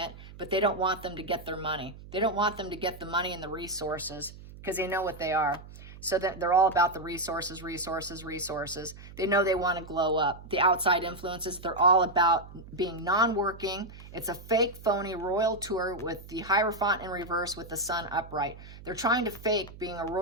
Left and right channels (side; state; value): right; noise; hum, 17 dB below the sound